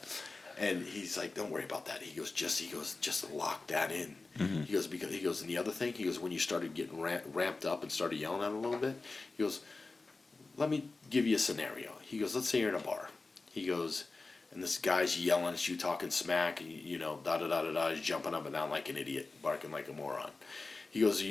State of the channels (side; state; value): right; quieter; 3.6 dB